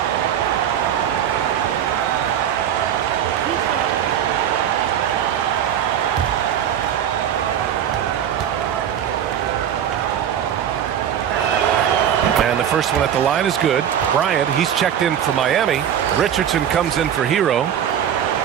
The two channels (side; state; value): left; quieter; 9.5 dB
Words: And the first one at the line is good. Bryant, he's checked in for Miami. Richardson comes in for Herro.